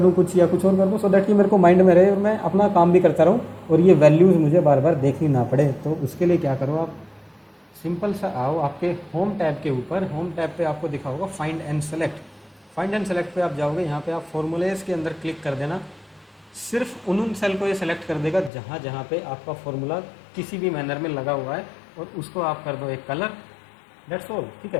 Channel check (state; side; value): drops out; right; at 18.5 s